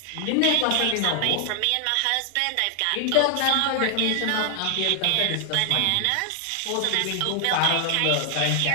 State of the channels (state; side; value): different; both; correlation 0.00